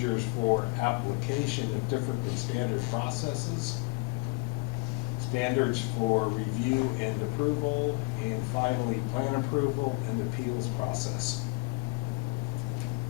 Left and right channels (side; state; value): right; quieter; 27.5 dB